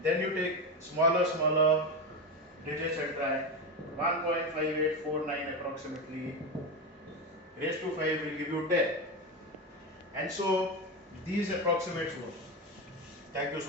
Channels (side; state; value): both; normal; correlation 0.17